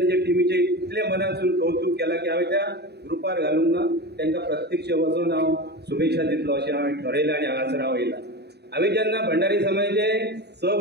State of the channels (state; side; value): late; left; 0.48 ms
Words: टिमीचे इतले मनासून कौतुक केला की हांवें त्या ग्रुपार घालूंक ना, तांकां प्रत्यक्ष वचून हांव शुभेच्छा दितलो अशें हांवें ठरयलां आनी हांगासर हांव येयला. हांवें जेन्ना भंडारी समाजाचे 6